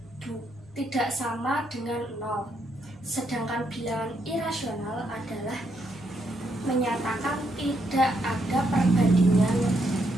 tidak sama dengan 0. Sedangkan bilangan irasional adalah menyatakan tidak ada perbandingan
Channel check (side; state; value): both; normal; correlation 0.77